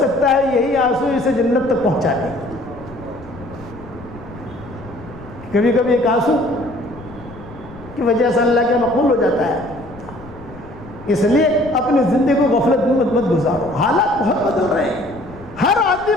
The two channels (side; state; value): left; noise; rumble, 18 dB below the sound